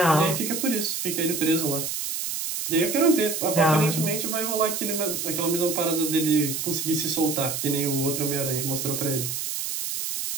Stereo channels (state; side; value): noise; right; hiss, 3 dB below the sound